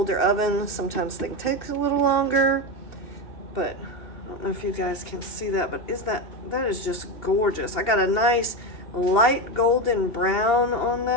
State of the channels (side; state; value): right; late; 2.7 ms